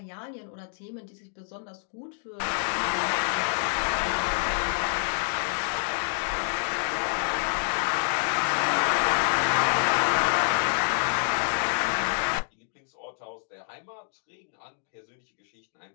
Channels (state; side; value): silent; right; digital silence